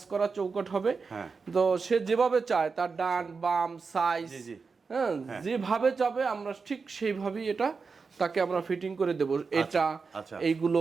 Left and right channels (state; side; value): quieter; left; 4.8 dB